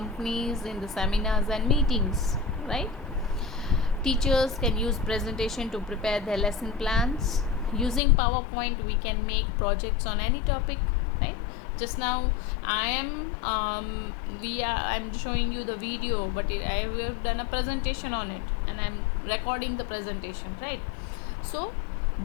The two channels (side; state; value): right; drops out; at 8.0 s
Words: in the seminars and meetings, right? Teachers can use presentation to prepare their lesson plans. Using PowerPoint, we can make projects on any topic, right? Just now I'm showing you the video, but I have done a presentation on it, and I'm recording the presentation, right? So